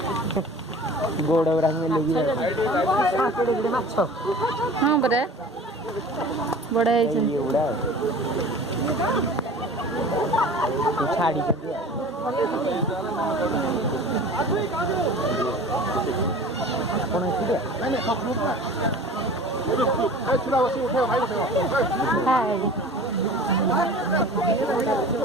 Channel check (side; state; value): both; normal; correlation 0.41